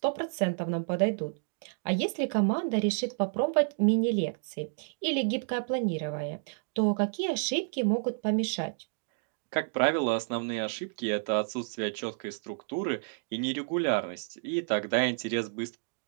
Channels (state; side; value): silent; left; digital silence